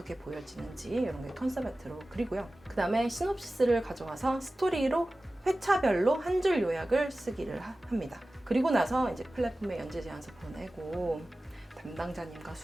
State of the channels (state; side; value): normal; both; correlation 0.96